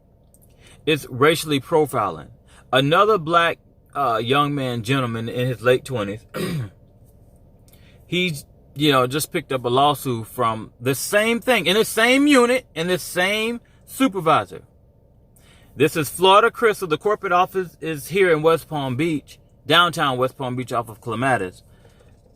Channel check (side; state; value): both; identical; correlation 1.00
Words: It's racially profiling. Another black gentleman in his late 20s, he's, just picked up a lawsuit from the same thing, in the same unit, in the same supervisor. This is Florida Crystal. The corporate office is here in West Palm Beach, downtown West Palm Beach, off of Clematis.